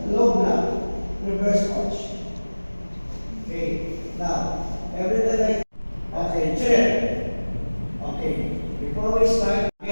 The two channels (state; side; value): inverted; both; correlation -1.00